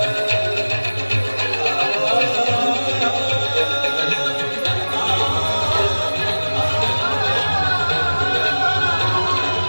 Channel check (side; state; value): both; inverted; correlation -1.00